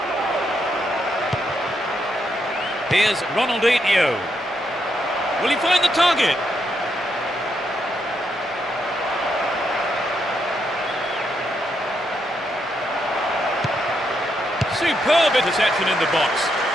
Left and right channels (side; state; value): both; normal; correlation 0.79